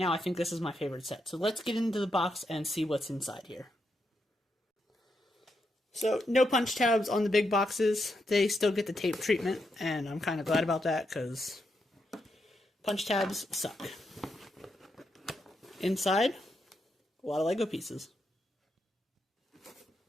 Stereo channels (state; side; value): normal; both; correlation 0.82